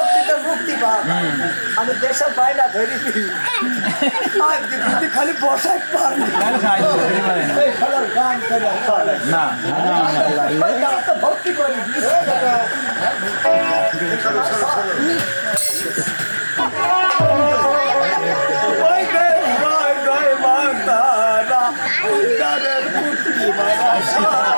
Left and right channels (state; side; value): inverted; both; correlation -1.00